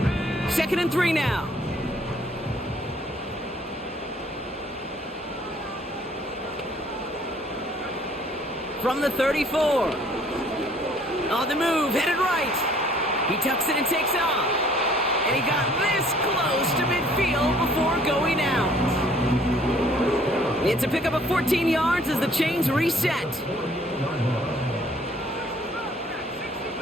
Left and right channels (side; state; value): both; normal; correlation 0.58